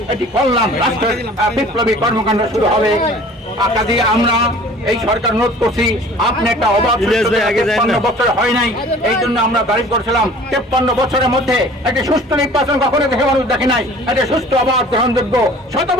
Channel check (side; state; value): both; normal; correlation 0.47